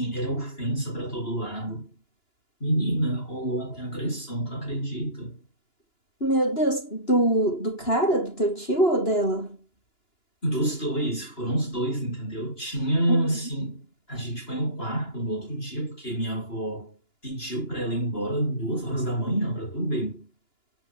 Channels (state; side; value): late; right; 2.9 ms